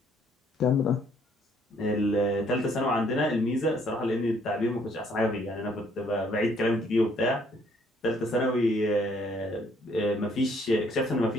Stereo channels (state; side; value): normal; both; correlation 0.65